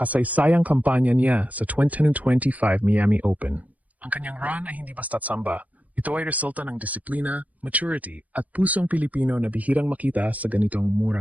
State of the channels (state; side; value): late; left; 0.073 ms